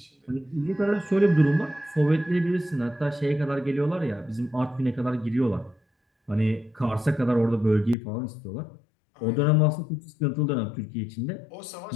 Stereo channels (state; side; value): drops out; right; at 8.0 s